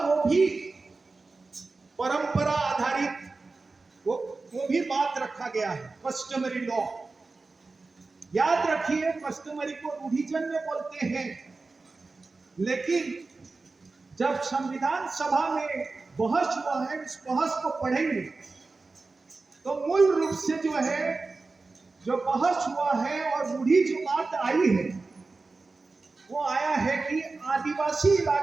भी परंपरा आधारित, वो भी बात रखा गया है, कस्टमरी लॉ। याद रखिए, कस्टमरी को रूढ़िजन्य बोलते हैं, लेकिन जब संविधान सभा में बहस हुआ है, इस बहस को पढ़ेंगे तो मूल रूप से जो बहस हुआ है और रूढ़ी जो बात आई है, वो आया है कि आदिवासी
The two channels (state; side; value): quieter; left; 3.8 dB